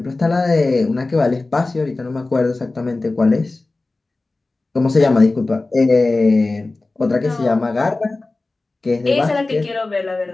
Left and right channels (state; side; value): quieter; right; 3.2 dB